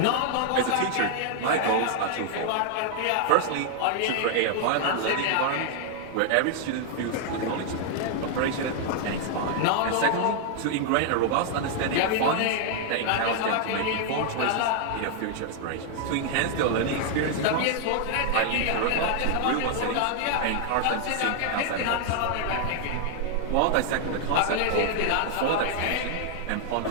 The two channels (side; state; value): both; different; correlation 0.00